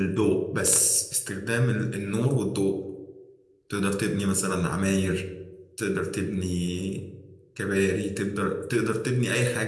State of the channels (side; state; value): both; identical; correlation 1.00